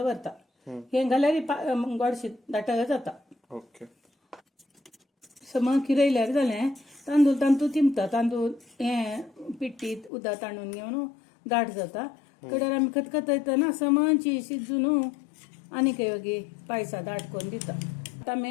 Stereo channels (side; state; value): right; drops out; at 10.1 s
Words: हे घाल्यार गोडशी दाट जाता ओके सम किरयल्यार जालें तांदूळ तिंपता तांदूळ हें पिट्टीत उदक ताणून घेवन दाट जाता कडेर आमी खतखतयतना समची शिजून आनी वेगळी पायसा दाट करून दिता आतां